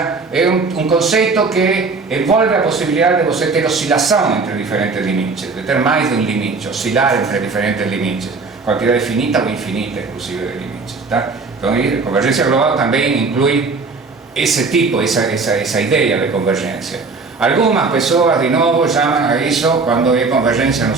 é um conceito que envolve a possibilidade de você ter oscilação entre diferentes limites, de ter mais de um limite, oscilar entre diferentes limites, quantidade finita ou infinita, inclusive, de limites, tá? Então, a convergência global também inclui esse tipo, essa ideia de convergência. Algumas pessoas, de novo, chamam a isso, quando é convergência no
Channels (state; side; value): quieter; left; 4.2 dB